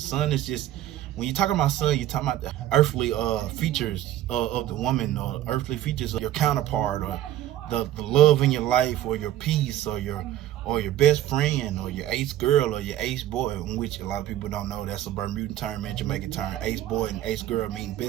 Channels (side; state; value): left; quieter; 13.0 dB